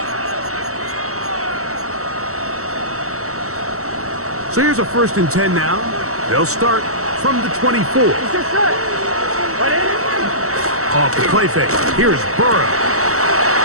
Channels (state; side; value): late; left; 0.64 ms